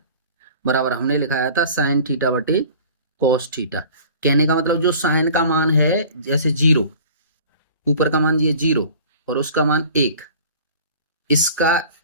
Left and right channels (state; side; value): inverted; both; correlation -0.44